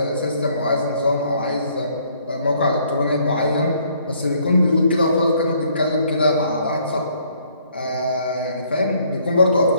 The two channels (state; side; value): inverted; both; correlation -0.65